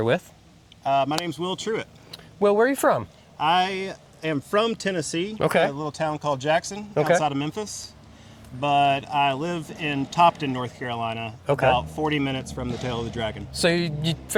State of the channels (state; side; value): identical; both; correlation 1.00